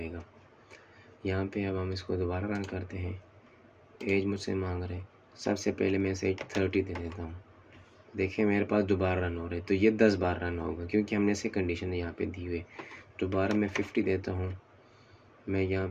यहाँ पे अब हम इसको दोबारा रन करते हैं। एज मुझसे मांग रहे हैं, सबसे पहले मैं इसे 30 दे देता हूँ। देखिए मेरे पास दोबारा रन हो रहे, तो ये 10 बार रन होगा क्योंकि हमने इसे कंडीशन यहाँ पे दी हुई है। दोबारा मैं 50 देता हूँ, मैं यहाँ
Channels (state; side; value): identical; both; correlation 1.00